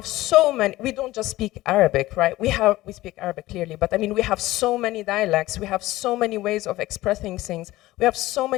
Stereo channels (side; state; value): right; quieter; 17.3 dB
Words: so many, we don't just speak Arabic, right? We speak Arabic clearly, but I mean, we have so many dialects, we have so many ways of expressing things, we have so